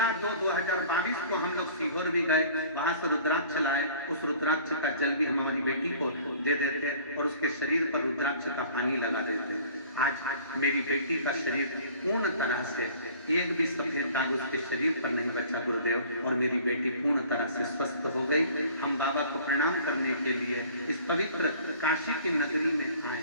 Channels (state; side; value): inverted; both; correlation -0.50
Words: को हम लोग सीहोर भी गए, वहां से रुद्राक्ष लाए। उस रुद्राक्ष का जल भी हम हमारी बेटी को दे देते और उसके शरीर पर रुद्राक्ष का पानी लगा देते। आज मेरी बेटी का शरीर पूर्ण तरह से, एक भी सफेद दाग उसके शरीर पर नहीं बचा गुरुदेव, और मेरी बेटी पूर्ण तरह से स्वस्थ हो गई। हम बाबा को प्रणाम करने के लिए इस पवित्र काशी की नगरी में